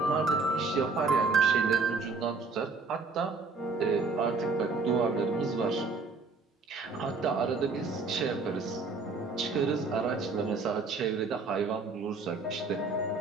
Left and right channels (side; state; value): left; quieter; 4.0 dB